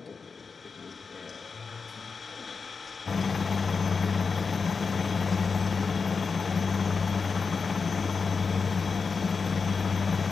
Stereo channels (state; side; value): quieter; right; 5.0 dB